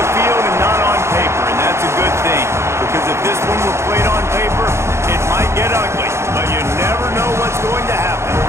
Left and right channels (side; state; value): left; late; 0.13 ms